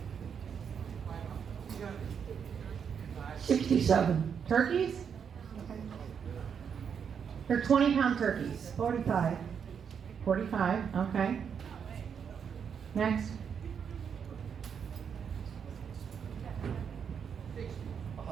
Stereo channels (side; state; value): left; quieter; 7.2 dB